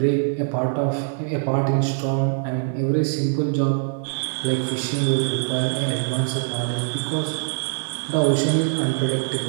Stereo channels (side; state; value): left; silent; 61 dB below the other